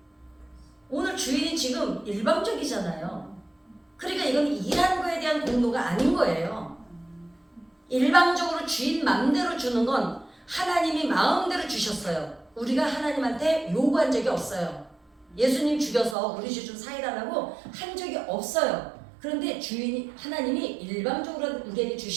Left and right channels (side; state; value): left; drops out; at 16.2 s